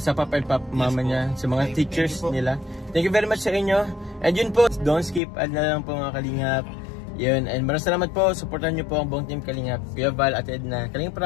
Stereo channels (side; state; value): right; drops out; at 5.2 s